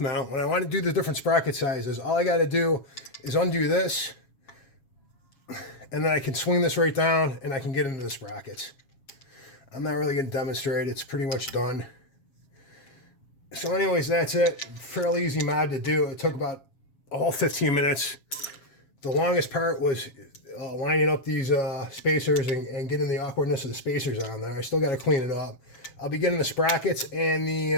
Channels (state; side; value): late; right; 7.3 ms